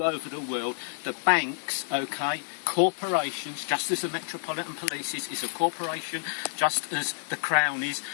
over over the world, the banks, okay, corporations, just as the Metropolitan Police is a corporation, just as the Crown is,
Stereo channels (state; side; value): silent; right; digital silence